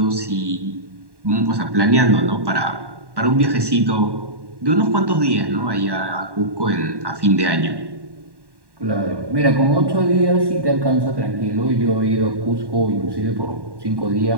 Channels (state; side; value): late; left; 1.1 ms